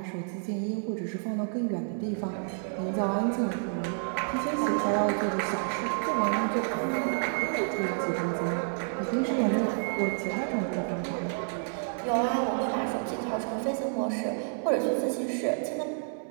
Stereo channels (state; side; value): silent; left; digital silence